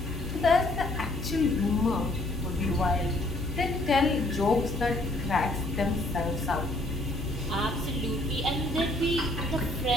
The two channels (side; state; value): left; noise; hum, 8 dB below the sound